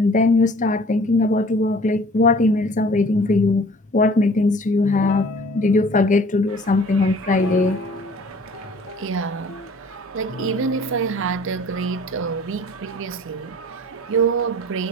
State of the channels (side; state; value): both; normal; correlation 0.49